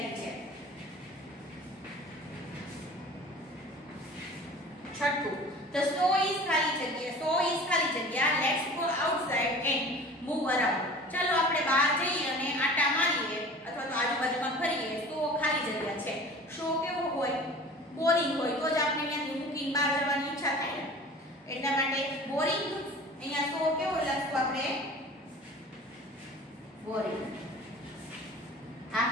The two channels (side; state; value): both; normal; correlation 0.42